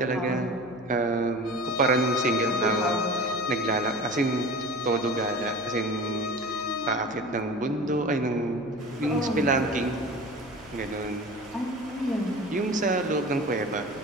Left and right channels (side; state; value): left; noise; hum, 23 dB below the sound